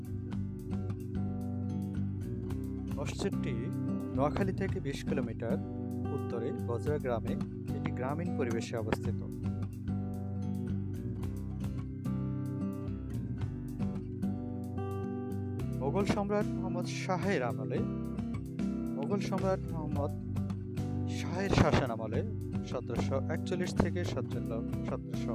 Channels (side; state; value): both; identical; correlation 1.00